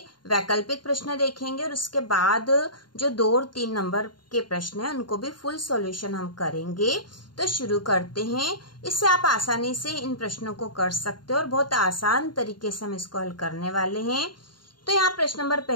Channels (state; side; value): late; right; 0.71 ms